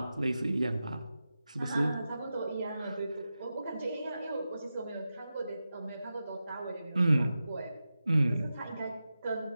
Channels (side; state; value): both; inverted; correlation -0.92